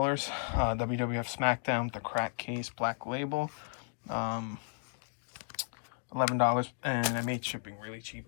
WWF SmackDown, the crack case, black label. $11, and I made shipping really cheap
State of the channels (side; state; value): right; silent; digital silence